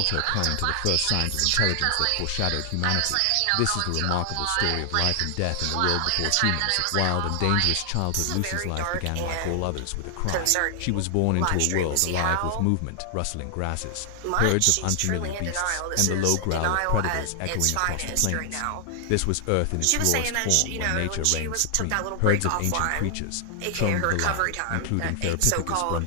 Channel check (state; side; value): different; both; correlation 0.00